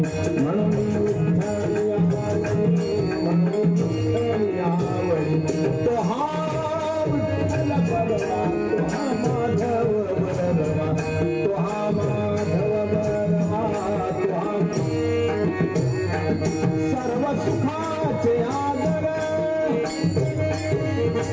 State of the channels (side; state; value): both; identical; correlation 1.00